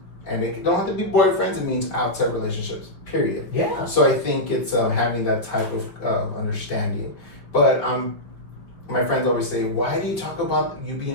And it don't have to be boyfriends, it means outside relationships, period. Yeah. So I think it's having that type of understanding. But my friends always say, why do you talk about you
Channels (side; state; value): right; late; 5.1 ms